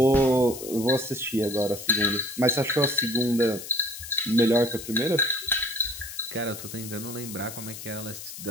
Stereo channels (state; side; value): noise; left; hiss, 11 dB below the sound